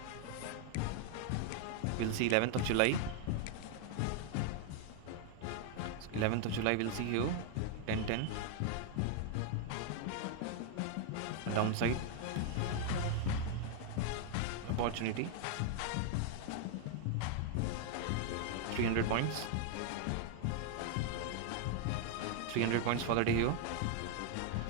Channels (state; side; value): different; both; correlation 0.00